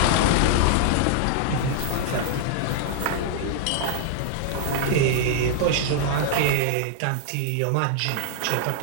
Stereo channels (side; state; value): both; different; correlation 0.00